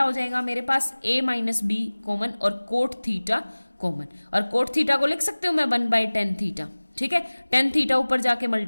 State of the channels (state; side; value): inverted; both; correlation -1.00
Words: हो जाएगा मेरे पास, A - B कॉमन और कोट थीटा कॉमन, और कोट थीटा को लिख सकते हो मैं 1/tan थीटा। ठीक है, tan थीटा ऊपर जाके